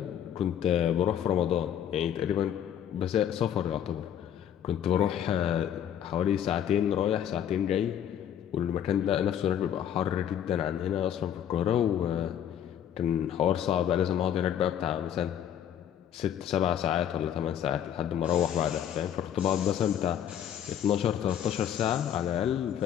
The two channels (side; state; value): right; quieter; 9.8 dB